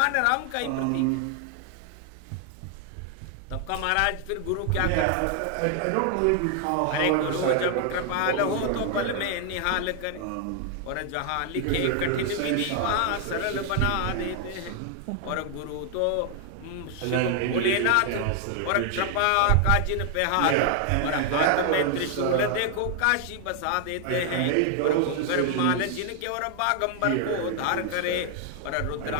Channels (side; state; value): both; different; correlation 0.00